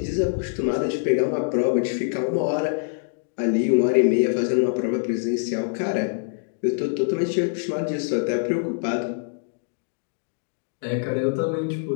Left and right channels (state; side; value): silent; right; digital silence